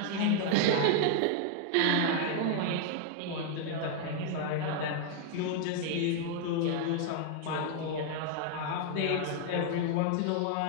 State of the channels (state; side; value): different; both; correlation 0.00